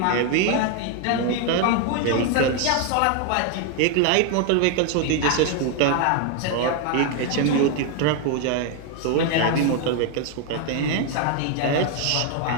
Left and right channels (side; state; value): both; different; correlation 0.01